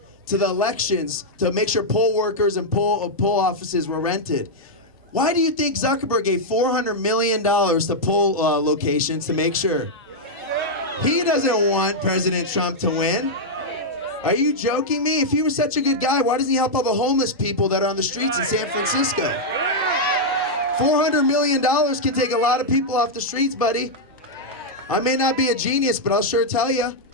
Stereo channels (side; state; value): both; normal; correlation -0.04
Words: the elections to make sure poll workers and poll offices were rented. Why do you think Zuckerberg gave $400 million to poll locations to make sure? He doesn't want President Trump to win. Are you joking me? If he was such a good guy, why doesn't he help all the homeless people that are on the streets in San Francisco? $400 million can take a lot of people off the streets, buddy. I may not be a genius, but I'll sure tell you.